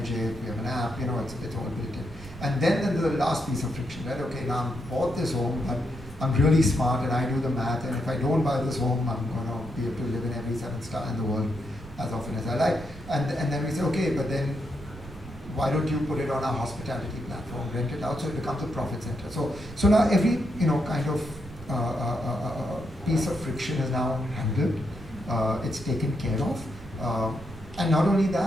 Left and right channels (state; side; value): noise; right; rumble, 17 dB below the sound